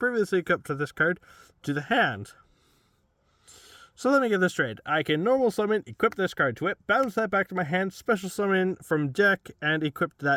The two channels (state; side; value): identical; both; correlation 1.00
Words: equipped with this card to the hand. So let me get this straight. I can normal summon, equip this card to it, bounce that back to my hand, special summon from deck, and equip